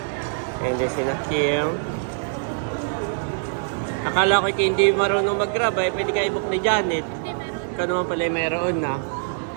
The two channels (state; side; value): silent; left; digital silence